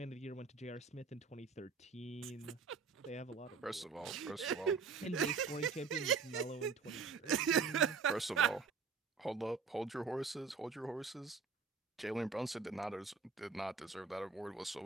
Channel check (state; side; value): quieter; left; 5.1 dB